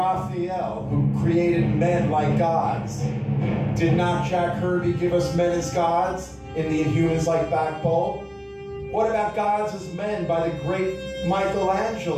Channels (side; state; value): both; identical; correlation 1.00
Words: who created men like gods, did not Jack Kirby give us men as gods in the Inhumans like backbone? What about gods as men by the great